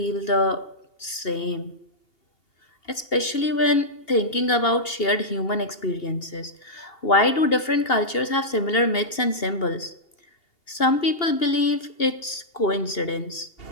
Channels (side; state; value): right; late; 2.8 ms